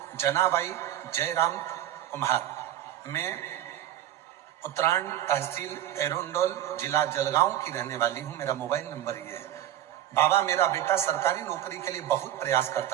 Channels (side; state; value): left; quieter; 12.2 dB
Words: जनाबाई जयराम कुमार, मैं उत्तरायण तहसील एरोंडोल जिला जलगांव की रहने वाली हूँ। मेरा मोबाइल नंबर ये है। बाबा, मेरा बेटा सरकारी नौकरी के लिए बहुत प्रयास